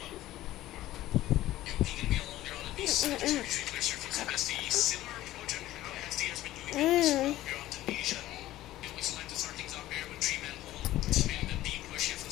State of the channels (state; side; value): quieter; right; 15.2 dB